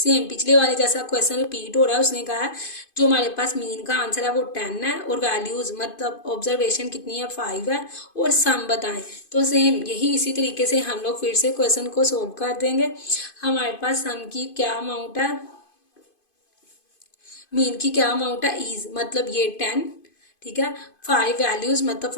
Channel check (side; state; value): right; late; 2.5 ms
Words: पिछले वाले जैसा क्वेश्चन रिपीट हो रहा है। उसने कहा है जो हमारे पास मीन का आंसर है वो 10 है, और वैल्यूज मतलब ऑब्जर्वेशन कितनी है, 5 है, और सम बताएं। तो सेम यही इसी तरीके से हम लोग फिर से क्वेश्चन को सोल्व कर देंगे। हमारे पास सम की क्या अमाउंट है, मीन की क्या अमाउंट है, इज मतलब ये 10। ठीक है। 5 वैल्यूज मतलब